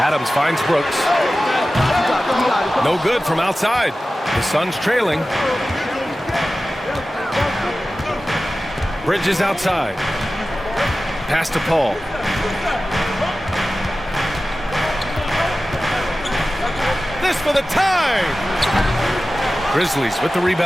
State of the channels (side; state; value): both; normal; correlation 0.95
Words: finds Brooks. No good from outside. The Suns trailing. Bridges outside. Pass to Paul. This for the tie. Grizzlies with the